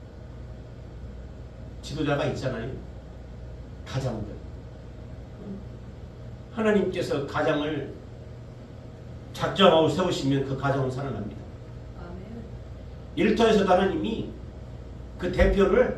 지도자가 있잖아요. 가장들. 하나님께서 가장을 작정하고 세우시면 그 가정은 살아납니다. 아멘. 일터에서도 하나님이 그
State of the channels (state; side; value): identical; both; correlation 1.00